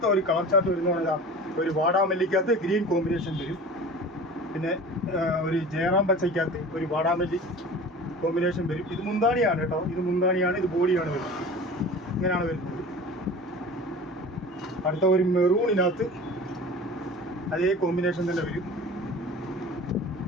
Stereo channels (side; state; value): both; normal; correlation 0.38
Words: ഒരു കളർ ചാർട്ട് വരുന്ന ഒരു വാടാമല്ലിക്കകത്ത് ഗ്രീൻ കോമ്പിനേഷൻ വരും. പിന്നെ ഒരു ജയറാം പച്ചയ്ക്കകത്ത് ഒരു വാടാമല്ലി കോമ്പിനേഷൻ വരും. ഇത് മുന്താണിയാണ് കേട്ടോ. ഇത് മുന്താണിയാണ്, ഇത് ബോഡിയാണ് വരുന്നത്. ഇങ്ങനെയാണ് വരുന്നത്. അടുത്ത ഒരു മെറൂണിനകത്ത് അതേ കോമ്പിനേഷൻ തന്നെ വരും.